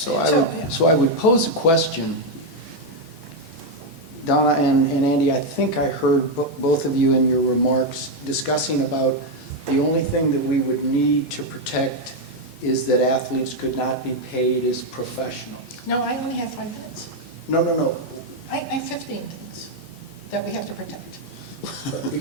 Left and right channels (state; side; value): normal; both; correlation 0.03